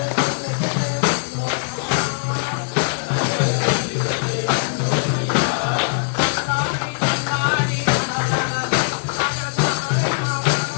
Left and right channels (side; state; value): right; silent; 65 dB below the other